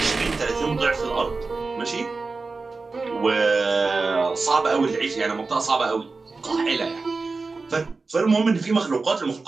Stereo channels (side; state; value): left; quieter; 4.0 dB